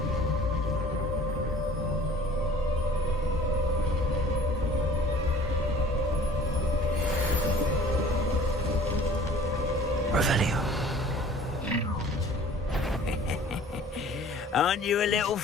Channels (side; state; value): both; normal; correlation 0.49